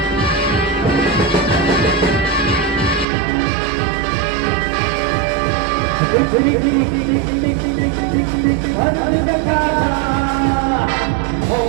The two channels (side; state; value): left; drops out; at 3.1 s